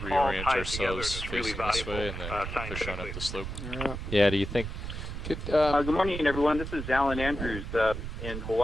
all reorient ties together and ourselves it's really facing this valuable way and then push on scientifically. up the slope. Yeah. yeah. Do you think? Good, Good morning, everyone. This is Alan Andrews in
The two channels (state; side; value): noise; right; rumble, 6 dB below the sound